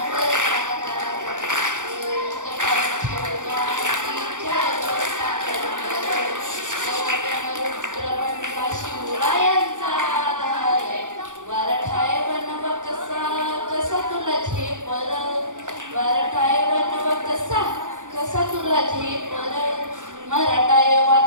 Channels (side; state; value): left; late; 0.86 ms